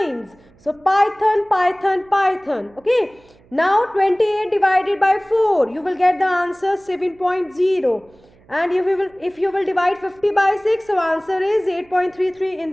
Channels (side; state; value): right; noise; hum, 29 dB below the sound